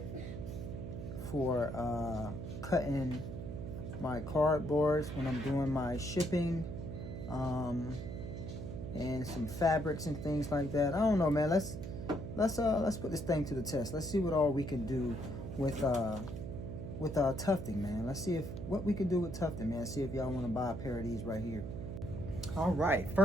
cutting my cardboards when I'm doing my shipping, and some fabrics and things like that. I don't know, man. Let's put this thing to the test. Let's see what all we can do with tufting, man. Let's see what we can do with tufting, man. See if y'all want to buy a pair of these right here. All right,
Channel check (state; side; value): noise; right; hum, 7 dB below the sound